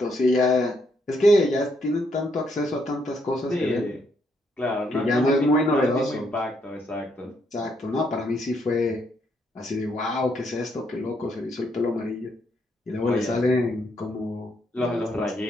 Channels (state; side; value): normal; both; correlation 0.74